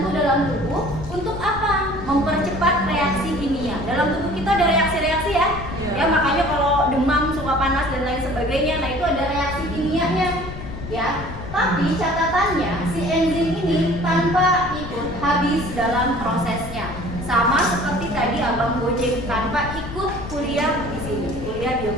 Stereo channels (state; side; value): noise; left; rumble, 10 dB below the sound